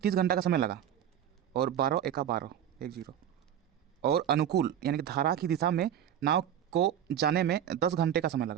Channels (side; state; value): left; quieter; 10.0 dB